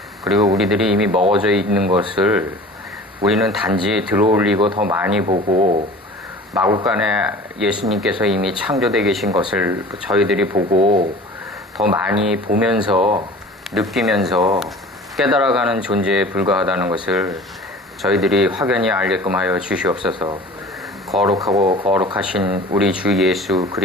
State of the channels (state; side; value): normal; both; correlation 0.42